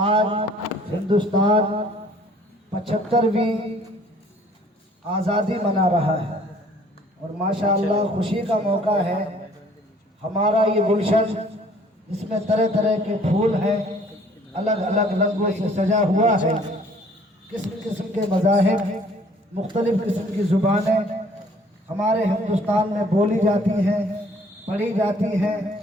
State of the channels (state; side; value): normal; both; correlation 0.57